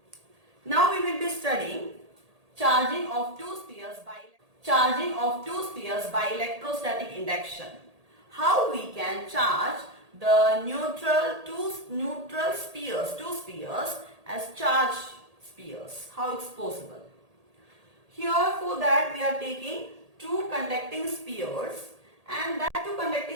Now we will be studying charging of two spheres by electrostatic induction. How we can charge the two spheres as charged spheres. How it's possible? Here for that we are taking two conducting spheres, and that two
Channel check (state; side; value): late; left; 1.8 ms